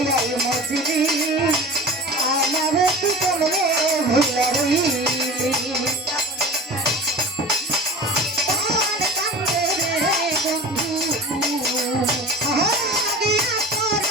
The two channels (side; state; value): both; normal; correlation 0.35